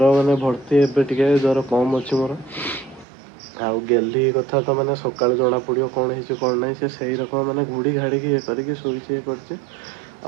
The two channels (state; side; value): drops out; left; at 3.1 s